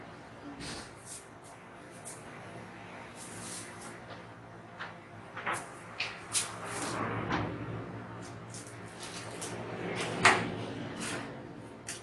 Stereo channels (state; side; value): identical; both; correlation 1.00